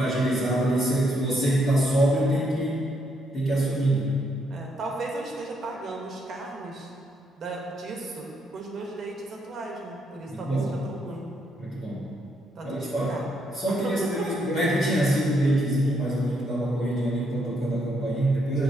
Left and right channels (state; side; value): normal; both; correlation 0.75